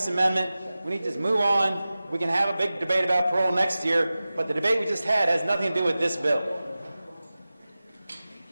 amendment. We need to just move on. We can have a big debate about parole next year, but the debate we just had has nothing to do with this bill.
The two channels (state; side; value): inverted; both; correlation -0.96